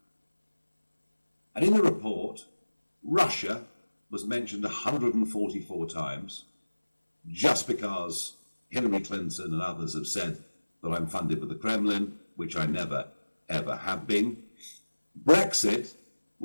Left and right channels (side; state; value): both; inverted; correlation -1.00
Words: And in the report, Russia was mentioned 144 times, just because Hillary Clinton and others have said that I'm funded by the Kremlin, which I never, ever have been. Brexit